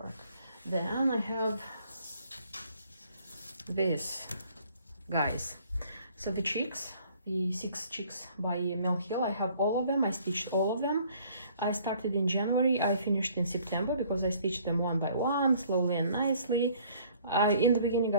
Then I have this, guys. So the chicks, the 6 chicks by Mill Hill, I have all of them. I stitched all of them. I started in January, I finished in September, because I stitched them one by one, slowly and nicely. In the beginning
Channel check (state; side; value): inverted; both; correlation -0.58